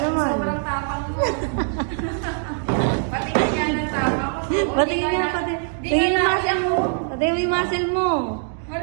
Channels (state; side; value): silent; left; 57 dB below the other